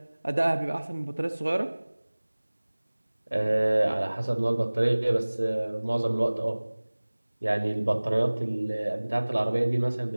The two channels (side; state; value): both; inverted; correlation -1.00